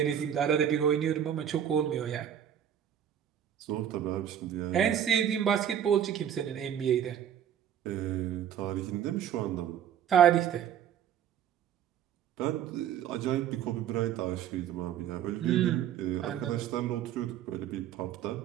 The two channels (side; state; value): left; quieter; 9.6 dB